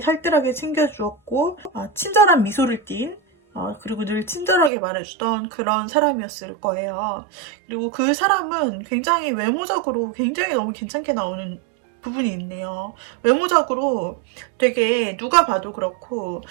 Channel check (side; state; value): left; drops out; at 4.7 s